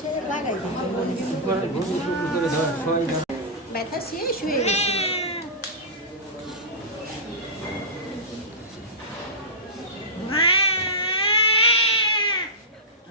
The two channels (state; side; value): normal; both; correlation -0.17